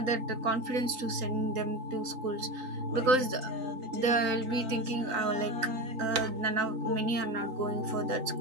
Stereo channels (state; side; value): late; left; 3.9 ms